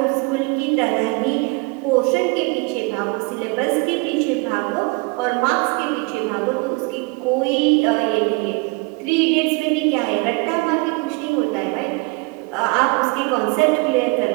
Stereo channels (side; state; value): left; quieter; 29.0 dB